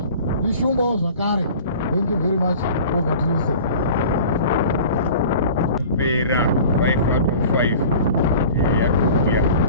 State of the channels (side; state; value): both; inverted; correlation -0.42